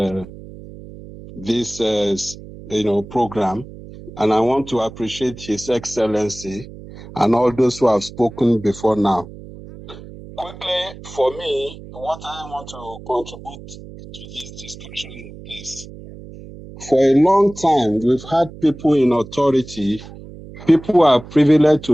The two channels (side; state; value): right; noise; hum, 16 dB below the sound